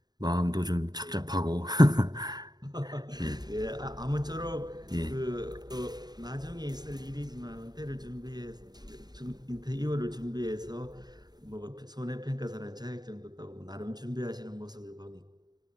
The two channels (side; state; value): left; late; 0.20 ms